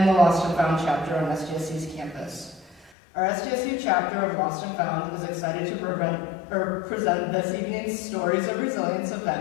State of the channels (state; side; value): drops out; right; at 2.9 s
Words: the Lost and Found chapter on SDSU's campus. Our SDSU chapter of Lost and Found is excited to present this evening's Stories of Resilience